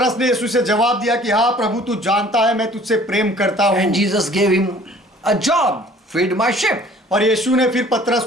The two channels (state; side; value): normal; both; correlation 0.52